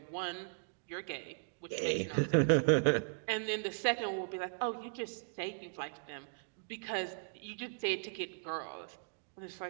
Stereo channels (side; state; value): left; silent; digital silence